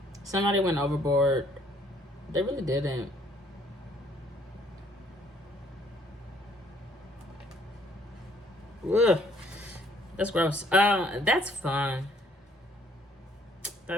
Somebody went overboard. They really didn't. Ugh. That's gross. That's fun.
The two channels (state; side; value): normal; both; correlation 0.63